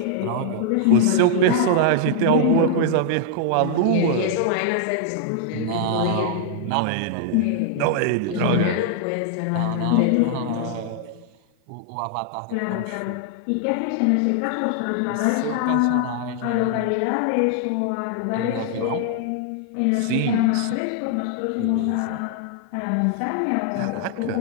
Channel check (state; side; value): different; both; correlation -0.01